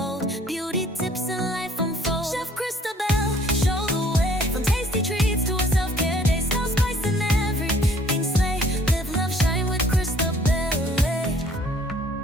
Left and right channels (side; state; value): both; normal; correlation 0.58